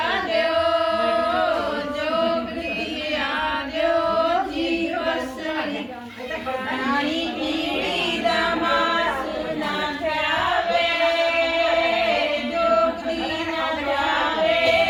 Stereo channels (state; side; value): identical; both; correlation 1.00